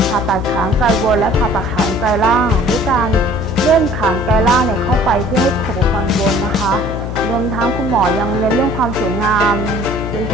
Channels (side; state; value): left; noise; hum, 5 dB below the sound